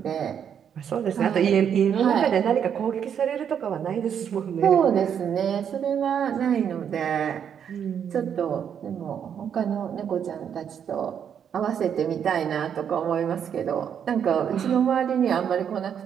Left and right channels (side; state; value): left; quieter; 8.3 dB